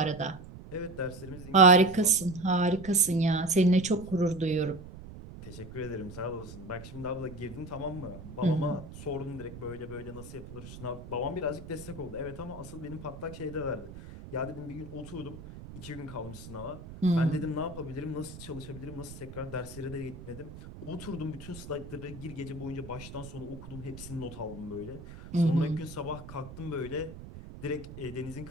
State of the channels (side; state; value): right; noise; rumble, 14 dB below the sound